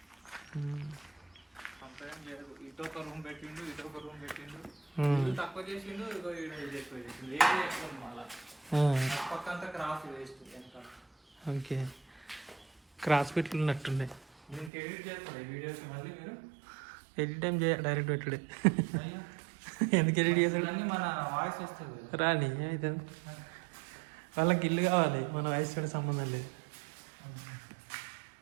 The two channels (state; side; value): drops out; left; at 14.7 s